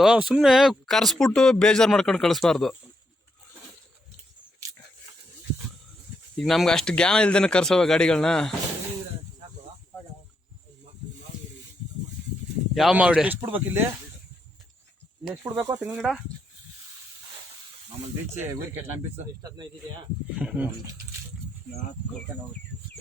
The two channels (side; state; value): both; normal; correlation 0.80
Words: ಸುಮ್ಮನೆ ಕರ್ಸ್ಬಿಟ್ಟು ಬೇಜಾರು ಮಾಡ್ಕೊಂಡು ಕಳಿಸ್ಬಾರ್ದು. ಈಗ ನಮ್ಗೆ ಅಷ್ಟು ಜ್ಞಾನ ಇಲ್ದೇನೆ ಕರ್ಸೋವ ಗಾಡಿಗಳನ್ನ. ಯಾವ ಮಾವಿಡೆ ಎಷ್ಟು ಬಿಡ್ಬೇಕು ಇಲ್ಲಿ ಎಷ್ಟು ಬಿಡ್ಬೇಕು ತೆಂಗಿನ ಗಿಡ ಮಾಮೂಲಿ ಬೀಚ್ ಊರಿಗೆ ನಮ್ಮ ಬೀಚ್ ಎಷ್ಟು 15 ಇದೆಯಾ?